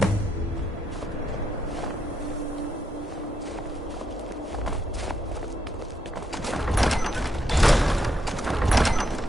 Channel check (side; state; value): both; normal; correlation 0.79